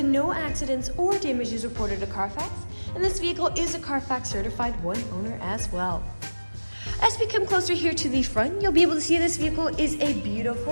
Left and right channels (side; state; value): both; inverted; correlation -1.00